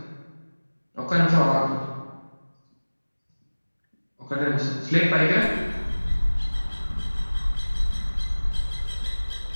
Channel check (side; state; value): both; inverted; correlation -1.00